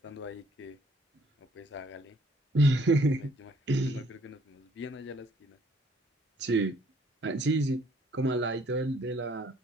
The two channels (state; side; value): normal; both; correlation 0.62